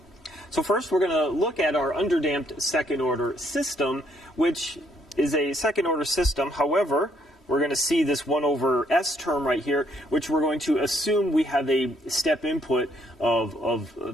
So first, we're going to look at our underdamped second-order system, which is a second-order system. However, we're going to see this 1 over S term right here, which we're going to assume we have a step input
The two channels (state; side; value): normal; both; correlation 0.70